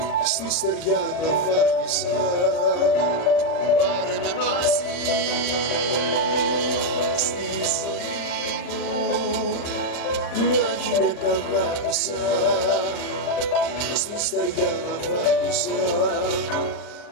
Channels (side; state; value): right; late; 39 ms